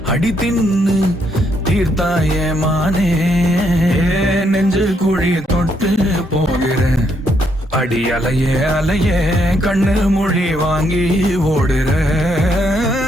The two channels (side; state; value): both; normal; correlation 0.74